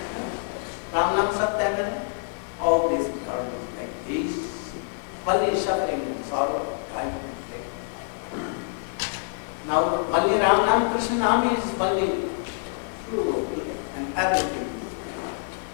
Ram Nam Satya Hai, all this world is like this. Only suffering and sorrow, time and taking. Now only Ram Nam, Krishna Nam is only true and everything.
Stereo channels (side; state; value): right; silent; 61 dB below the other